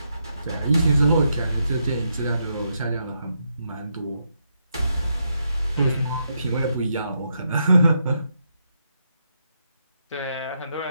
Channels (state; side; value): inverted; both; correlation -0.80